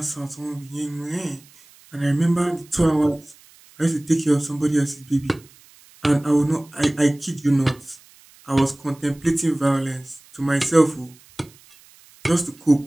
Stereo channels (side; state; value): right; noise; hiss, 26 dB below the sound